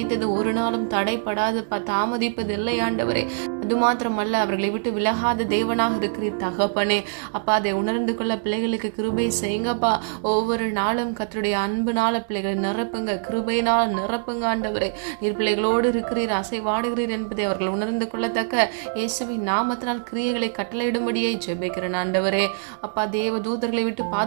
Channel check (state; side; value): silent; left; digital silence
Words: ஒரு நாளும் தடைப்படாதுப்பா, தாமதிப்பதில்லை ஆண்டவரே. அது மாத்திரமல்ல, அவர்களை விட்டு விலகாத தேவனாக இருக்கிறீர் தகப்பனே. அப்பா, அதை உணர்ந்து கொள்ள பிள்ளைகளுக்கு கிருபை செய்யுங்கப்பா. ஒவ்வொரு நாளும் கர்த்தருடைய அன்புனால பிள்ளைகளை நிரப்புங்க, கிருபையினால் நிரப்புங்க ஆண்டவரே. நீர் பிள்ளைகளோடு இருக்கிறீர், அசைவாடுகிறீர் என்பதை அவர்கள் உணர்ந்து கொள்ளத்தக்க இயேசுவின் நாமத்தினால் கிரியைகளை கட்டளையிடும் ஜெபிக்கிறேன் ஆண்டவரே. அப்பா, தேவ தூதர்களை விட்டு